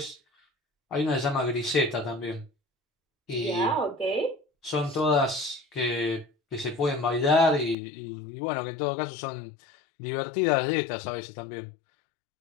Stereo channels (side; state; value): right; drops out; at 7.8 s